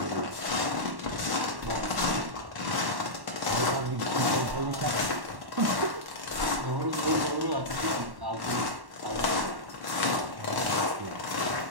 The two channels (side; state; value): left; late; 1.1 ms